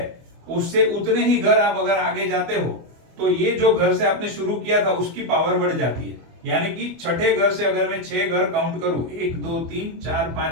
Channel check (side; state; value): left; late; 24 ms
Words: उससे उतने ही घर आप अगर आगे जाते हो तो ये जो घर से आपने शुरू किया था उसकी पावर बढ़ जाती है। यानी कि छठे घर से अगर मैं 6 घर काउंट करूं, 1, 2, 3, 4,